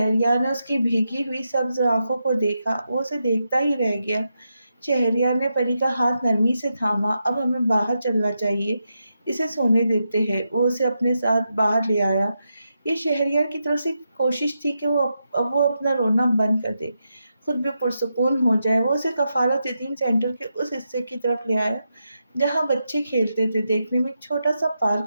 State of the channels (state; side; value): inverted; both; correlation -0.86